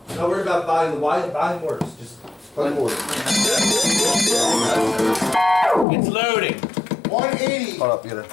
Don't worry about buying the why. Buying works. Just Plug it in. It's loading. 180. hold up, get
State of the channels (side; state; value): right; drops out; at 5.9 s